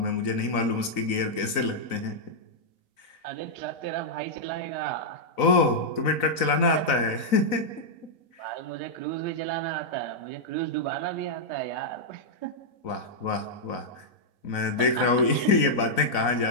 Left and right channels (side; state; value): right; late; 4.0 ms